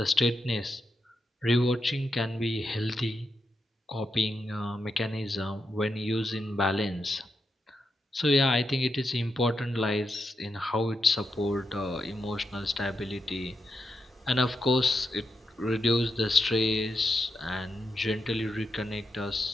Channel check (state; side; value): normal; both; correlation 0.85